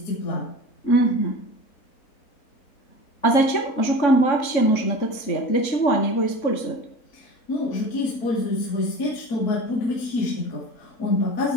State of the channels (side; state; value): right; late; 3.6 ms